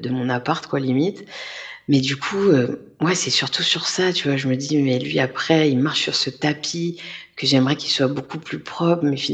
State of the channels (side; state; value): both; identical; correlation 1.00